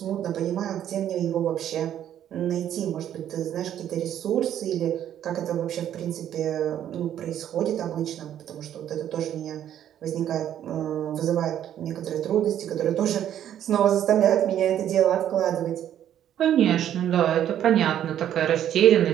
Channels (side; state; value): left; quieter; 10.7 dB